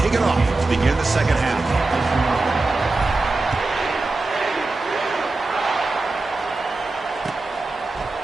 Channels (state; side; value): quieter; left; 3.3 dB